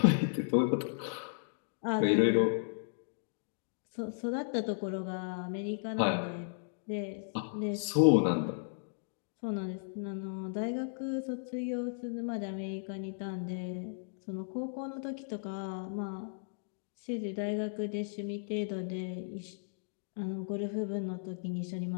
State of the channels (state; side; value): silent; right; digital silence